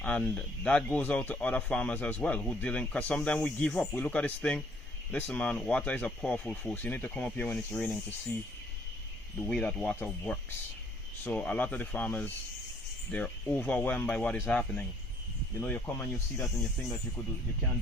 and that goes out to other farmers as well who dealing, because sometimes we give up. We look at this thing, listen man, water is a powerful force. You need to come up here when it's raining to see the way that water works. So a lot of the farmers, they're overwhelmed by what is happening. You know, you come and you see that and you think that you can't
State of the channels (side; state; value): both; normal; correlation 0.63